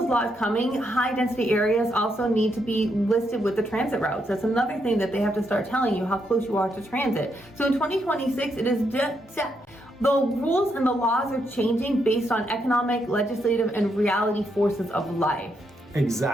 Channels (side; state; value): both; normal; correlation 0.79